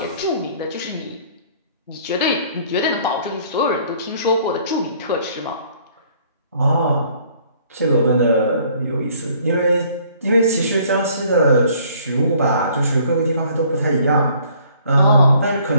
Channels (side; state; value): both; inverted; correlation -0.59